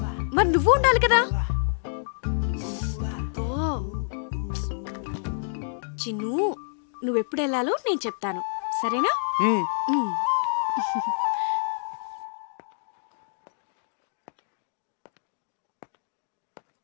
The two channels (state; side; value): silent; right; digital silence